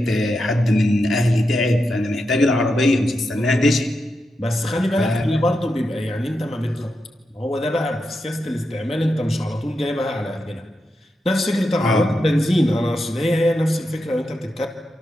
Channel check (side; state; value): both; normal; correlation 0.87